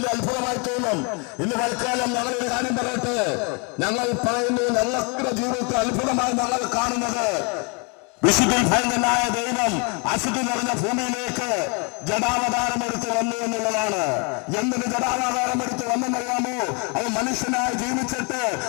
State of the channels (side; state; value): right; quieter; 33.1 dB